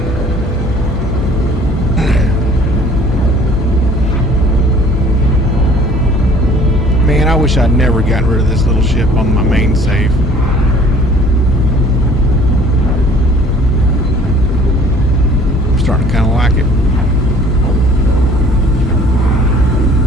Man, I wish I'd never gotten rid of this little ship on my main save. I'm starting to kind of like it.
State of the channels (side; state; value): both; normal; correlation 0.53